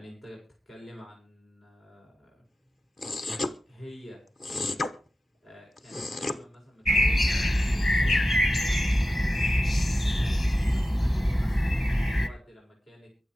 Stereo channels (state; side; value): normal; both; correlation 0.93